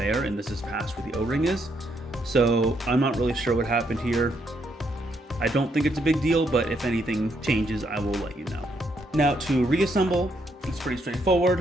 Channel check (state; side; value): normal; both; correlation 0.75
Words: and this is past where the O-ring is. So I'm not really sure what happened here. I don't think it's a big deal, but if anything changes, I will let you know. Now to reassemble, it's pretty